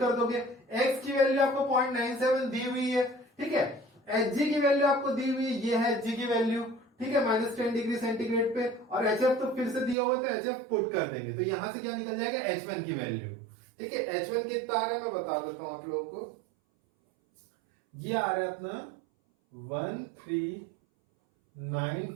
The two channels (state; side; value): drops out; left; at 10.0 s